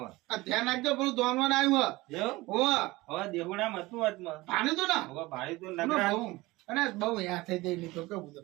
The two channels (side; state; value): left; quieter; 20.5 dB